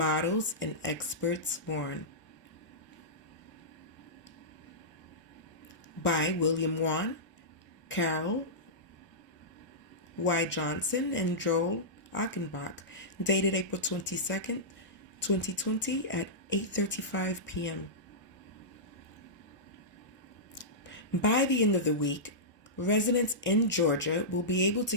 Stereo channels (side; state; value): both; normal; correlation -0.15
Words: and Experts Warn, by William Wan, Carol Y. Johnson, and Joel Achenbach, dated April 22nd, 2020 at 8:35 p.m. By the end of the week, residents in Georgia will be able to